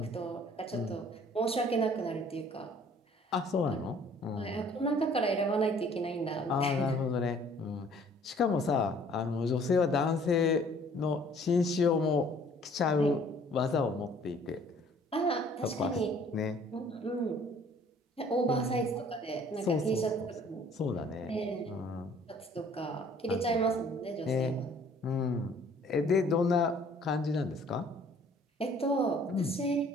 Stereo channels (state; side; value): normal; both; correlation 0.56